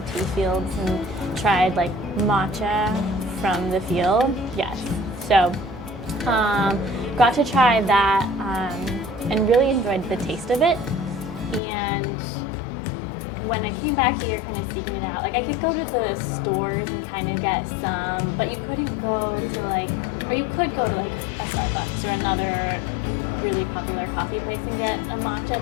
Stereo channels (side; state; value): right; drops out; at 11.6 s